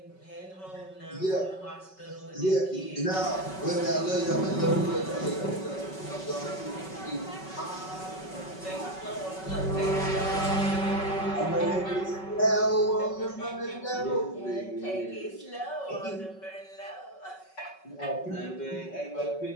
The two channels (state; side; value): late; right; 5.3 ms